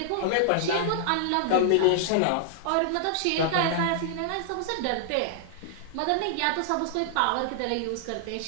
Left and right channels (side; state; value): both; different; correlation -0.01